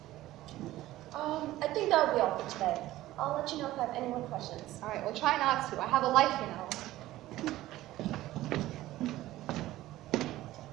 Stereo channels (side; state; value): left; quieter; 15.7 dB